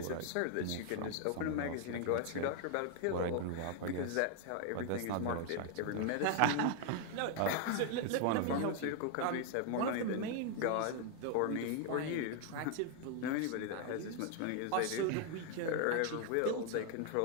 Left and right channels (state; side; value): different; both; correlation 0.00